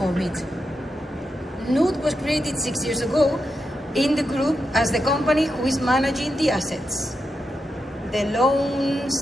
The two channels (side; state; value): both; normal; correlation 0.86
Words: it. Nude was created 6 years ago in the group as the company who is managing the assets, the loans,